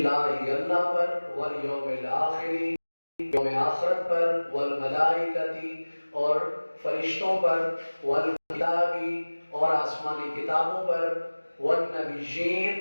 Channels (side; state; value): both; inverted; correlation -1.00